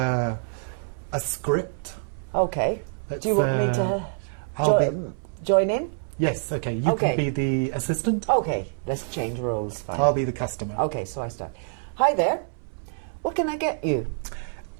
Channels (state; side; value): silent; left; 59 dB below the other